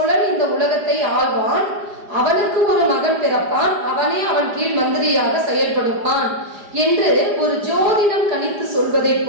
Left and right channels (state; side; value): late; left; 4.9 ms